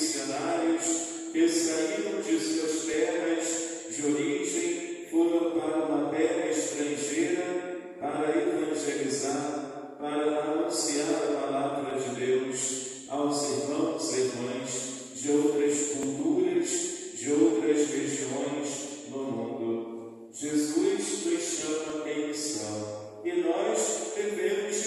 que saíram de suas terras de origem, foram para uma terra estrangeira para evangelizar, para anunciar a palavra de Deus aos irmãos e irmãs de outras culturas, de outras regiões no mundo. Jesus nos chama em missão e nós devemos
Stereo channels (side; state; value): both; identical; correlation 1.00